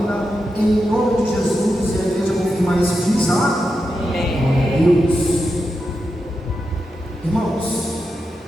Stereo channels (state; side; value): normal; both; correlation 0.88